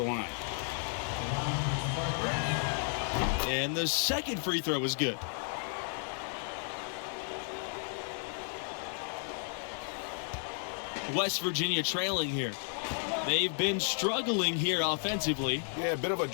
line. And the second free throw was good. West Virginia trailing here. They've been struggling here offensively. Yeah, a bit of a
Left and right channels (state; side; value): silent; right; 56 dB below the other